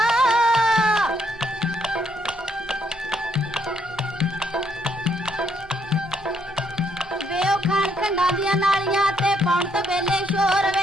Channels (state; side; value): normal; both; correlation 0.72